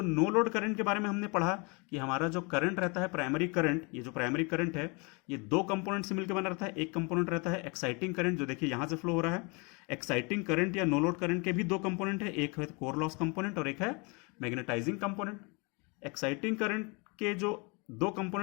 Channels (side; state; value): right; quieter; 30.8 dB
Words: नो लोड करंट के बारे में हमने पढ़ा कि हमारा जो करंट रहता है प्राइमरी करंट, ये जो प्राइमरी करंट है ये दो कंपोनेंट से मिलकर बना रहता है। एक कंपोनेंट रहता है एक्साइटिंग करंट, जो देखिए यहां से फ्लो हो रहा है। एक्साइटिंग करंट या नो लोड करंट के भी दो कंपोनेंट है, एक है कोर लॉस कंपोनेंट और एक है मैग्नेटाइजिंग कंपोनेंट। एक्साइटिंग करंट के जो दो